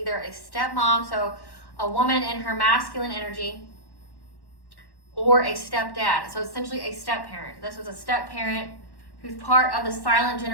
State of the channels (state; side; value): late; right; 1.1 ms